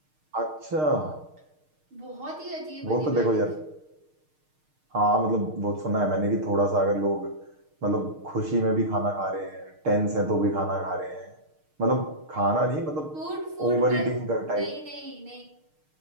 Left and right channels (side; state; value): left; late; 6.5 ms